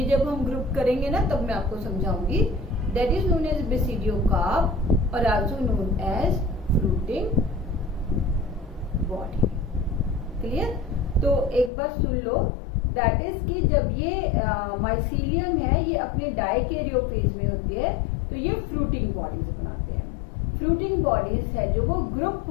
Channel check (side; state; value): right; drops out; at 11.7 s